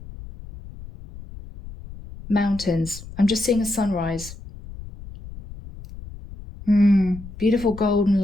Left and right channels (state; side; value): noise; left; rumble, 15 dB below the sound